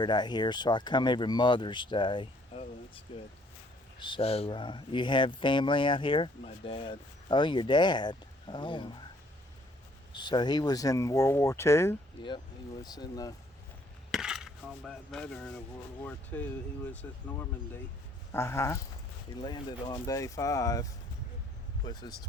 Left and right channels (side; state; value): both; normal; correlation 0.63